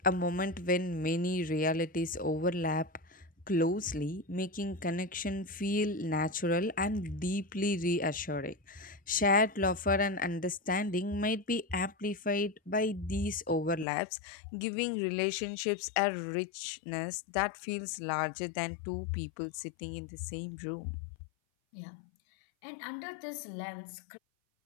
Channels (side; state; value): right; drops out; at 13.9 s